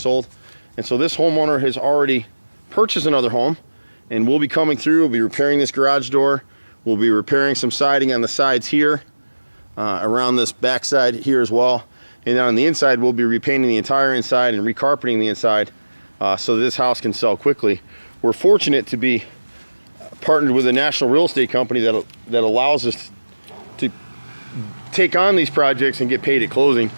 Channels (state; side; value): inverted; both; correlation -1.00